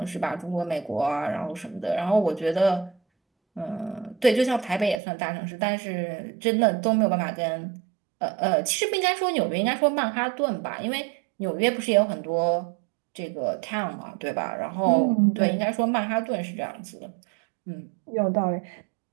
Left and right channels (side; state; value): left; drops out; at 5.0 s